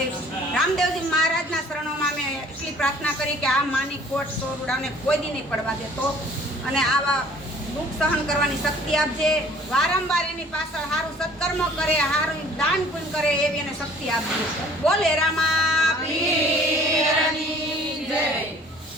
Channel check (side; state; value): both; normal; correlation 0.53